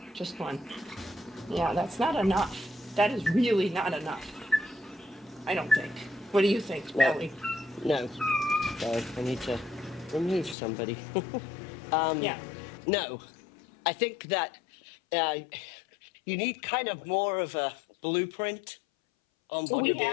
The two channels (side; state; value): right; drops out; at 10.6 s